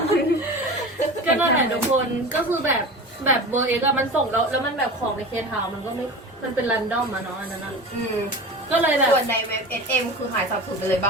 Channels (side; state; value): both; normal; correlation 0.32